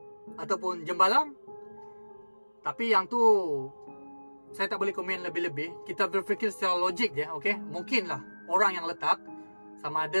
ataupun jembalang. Tapi yang tu saya tak boleh komen lebih-lebih. Kita berfikir secara logik je, okey? Mungkinlah orang yang letak, sama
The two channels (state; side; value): inverted; both; correlation -1.00